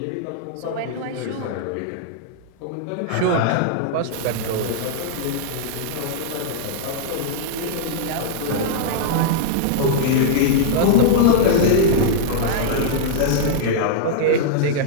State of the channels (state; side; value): different; both; correlation -0.01